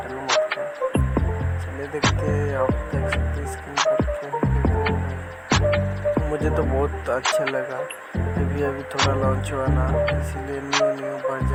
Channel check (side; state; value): both; identical; correlation 1.00